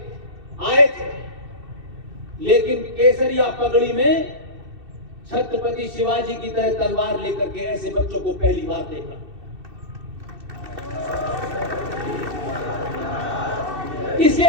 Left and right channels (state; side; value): late; left; 2.6 ms